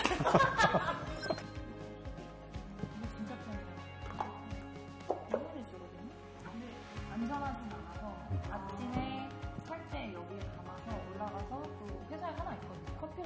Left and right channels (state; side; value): identical; both; correlation 1.00